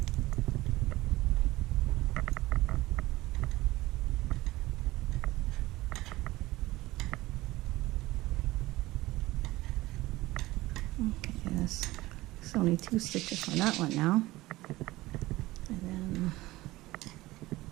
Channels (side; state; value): left; quieter; 18.5 dB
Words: Okay, there's only 2 stitches on that one now. And then